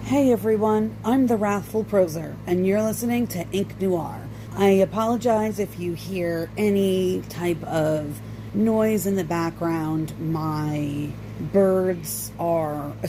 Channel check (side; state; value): both; identical; correlation 1.00